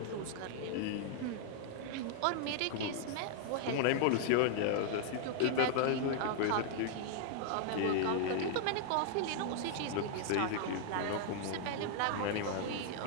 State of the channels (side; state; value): both; different; correlation -0.01